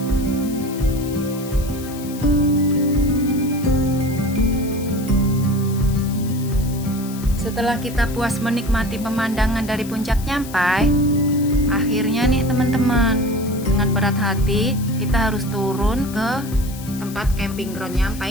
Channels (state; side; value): noise; left; hiss, 16 dB below the sound